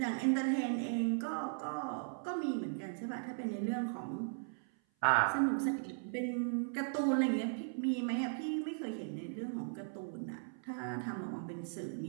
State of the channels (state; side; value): silent; left; 53 dB below the other